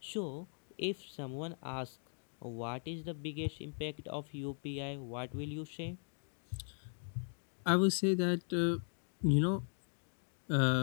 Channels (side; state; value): right; silent; digital silence